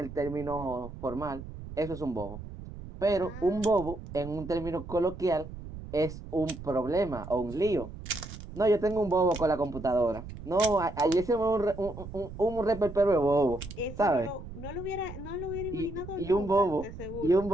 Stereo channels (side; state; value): right; noise; rumble, 12 dB below the sound